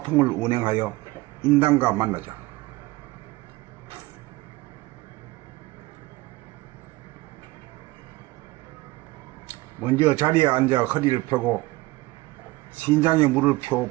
운행하여 인당과 만나자. 먼저 자리에 앉아 허리를 펴고 신장에 물을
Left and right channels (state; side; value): quieter; left; 20.5 dB